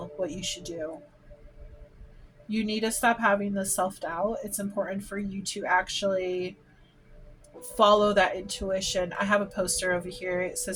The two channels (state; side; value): identical; both; correlation 1.00